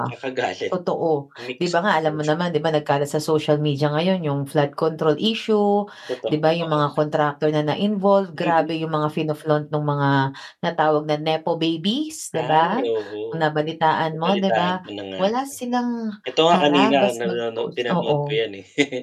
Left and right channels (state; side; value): identical; both; correlation 1.00